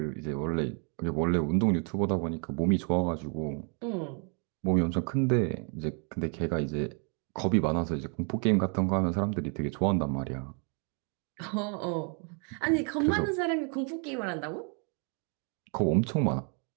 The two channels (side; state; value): left; quieter; 38.7 dB